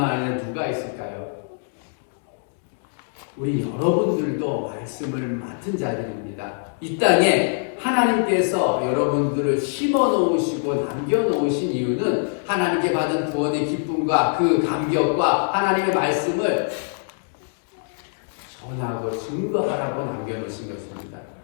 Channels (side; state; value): right; silent; 63 dB below the other